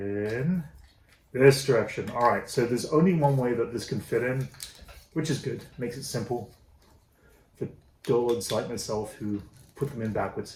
this direction. All right, so there's only one way that this can fit in, which is good. Makes it simple for dullards like myself who put them in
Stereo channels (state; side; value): identical; both; correlation 1.00